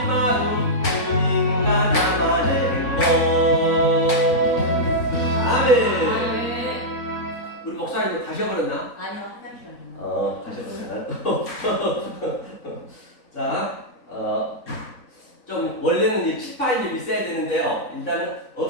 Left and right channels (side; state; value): right; late; 3.9 ms